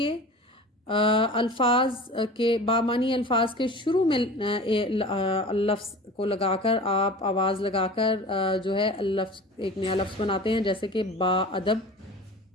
الفاظ کے بامانی الفاظ کے شروع میں لفظ کو لگا کر آپ آواز لگا کر جو ہے لفظ ایک نیا لفظ بناتے ہیں، جیسے کہ با ادب،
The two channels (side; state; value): both; normal; correlation 0.38